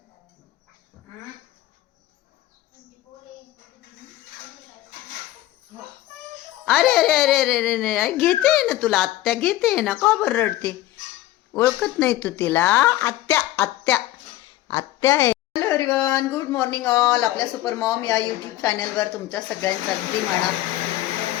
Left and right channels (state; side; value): quieter; right; 15.3 dB